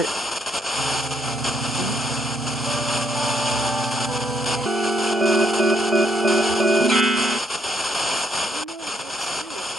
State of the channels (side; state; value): both; normal; correlation 0.73